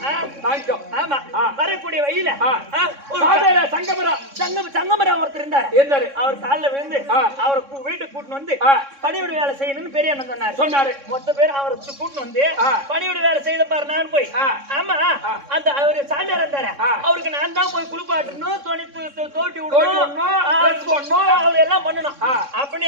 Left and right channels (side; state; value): left; late; 3.6 ms